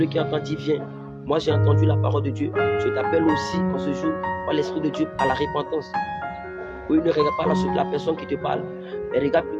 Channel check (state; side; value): identical; both; correlation 1.00